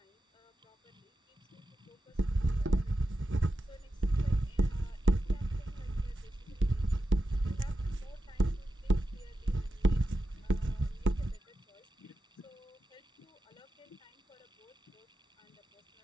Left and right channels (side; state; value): both; normal; correlation 0.90